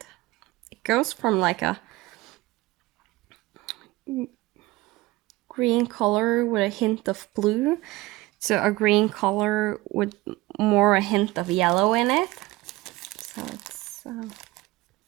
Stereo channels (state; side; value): quieter; left; 20.0 dB